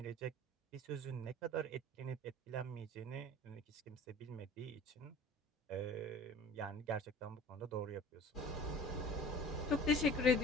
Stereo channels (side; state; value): both; normal; correlation 0.44